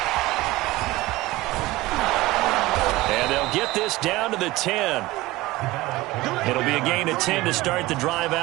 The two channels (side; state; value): left; quieter; 18.9 dB